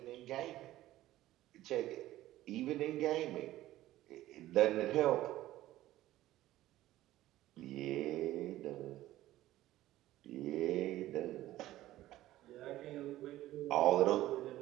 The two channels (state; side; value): quieter; left; 15.1 dB